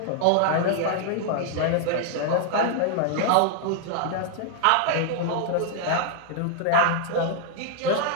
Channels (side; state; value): both; different; correlation 0.00